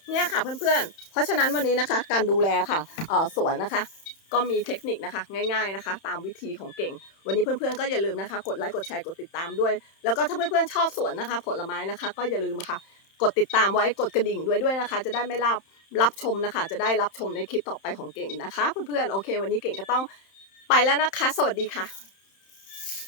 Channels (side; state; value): right; late; 31 ms